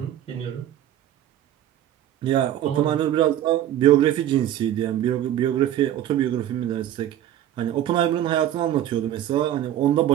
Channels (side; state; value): left; quieter; 11.9 dB